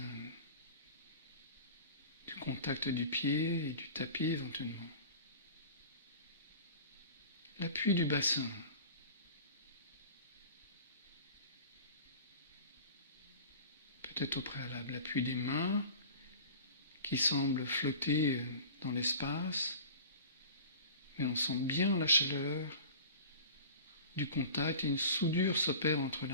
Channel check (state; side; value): inverted; both; correlation -0.40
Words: du contact du pied et du tapis éventuellement. L'appui du bassin. Peut-être au préalable, l'appui des mains qui semble flotter dans l'espace, mais on sent bien la chaleur du contact et une soudure s'opère entre